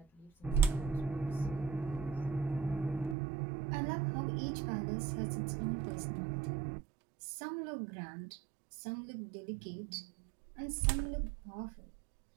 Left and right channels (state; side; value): drops out; left; at 3.2 s